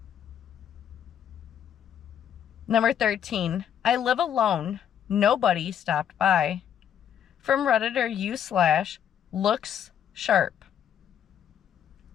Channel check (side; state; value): right; quieter; 9.3 dB